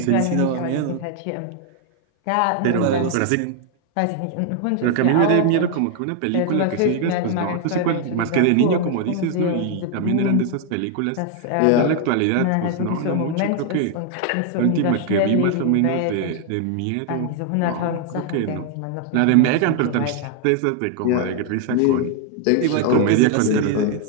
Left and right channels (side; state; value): both; different; correlation 0.00